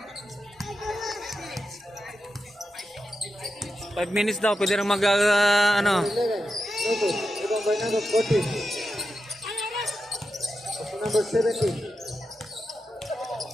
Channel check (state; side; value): normal; both; correlation 0.89